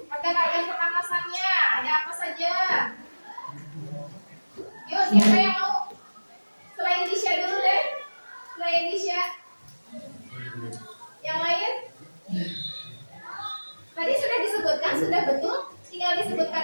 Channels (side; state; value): both; inverted; correlation -1.00